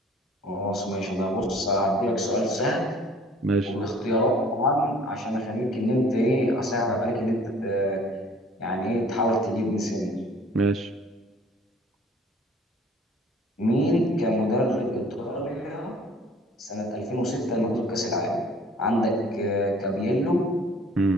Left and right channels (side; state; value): both; normal; correlation 0.53